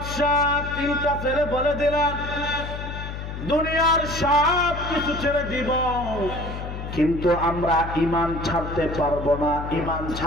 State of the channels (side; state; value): left; noise; hum, 7 dB below the sound